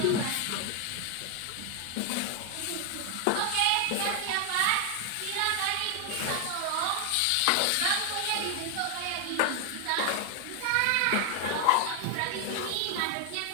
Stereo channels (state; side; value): different; both; correlation 0.00